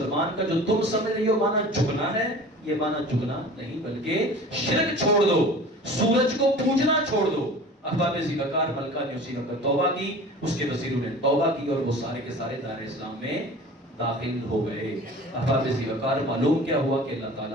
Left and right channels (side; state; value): both; normal; correlation 0.41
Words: کا جو تم سمجھ رہی ہو مانا جھکنا ہے، یہ مانا جھکنا نہیں بلکہ شرک چھوڑ دو، سورج کو پوجنا چھوڑ دو۔ احباب زیرکار، ملکہ نے اسی وقت توبہ کی، اس کے وزیروں نے توبہ کی اور وہ سارے کے سارے دار اسلام میں داخل ہو گئے۔ احباب زیرکار، معلوم کیا ہوا کہ اللہ